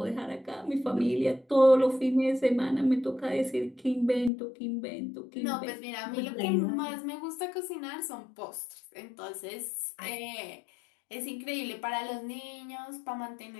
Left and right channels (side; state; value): right; drops out; at 4.3 s